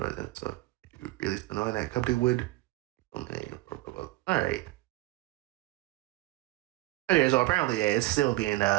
you really knowing that company would. All right. Okay, so apparently, yeah, it's still being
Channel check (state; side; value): quieter; left; 18.9 dB